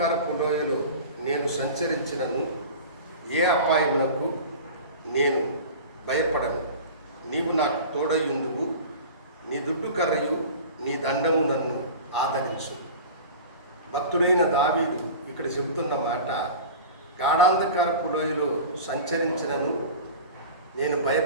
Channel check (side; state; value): both; inverted; correlation -0.35